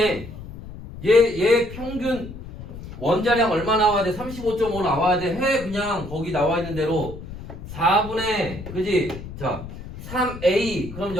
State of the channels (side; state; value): left; noise; rumble, 12 dB below the sound